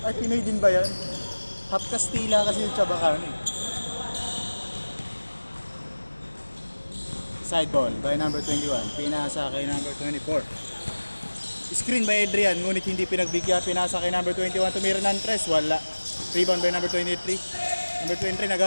Ay, Pinoy din ba yan? Half Kastila kasi yung tsabakano eh. Side ball by number 21. Pinasa kay number 24. Screen by Adrian. Ngunit hindi pinagbigyan. Pinasa kay number 21. Tumira ng 3. Wala. Rebound by number 23. Number 23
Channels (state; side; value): inverted; both; correlation -1.00